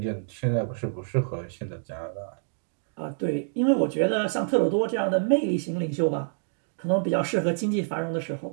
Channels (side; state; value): left; silent; digital silence